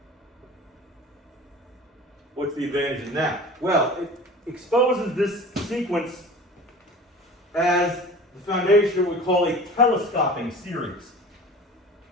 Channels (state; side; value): normal; both; correlation 0.39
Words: What's the advantage in that? Well, it exposes this sequence as the foundation of what we call a telescoping series.